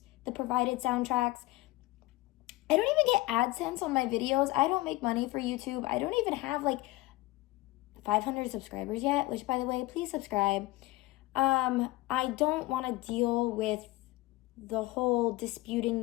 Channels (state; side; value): quieter; right; 19.6 dB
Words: the provided soundtracks. I don't even get AdSense on my videos. I don't make money for YouTube. I don't even have like 500 subscribers yet, which by the way, please subscribe. I don't want to deal with the whole disputing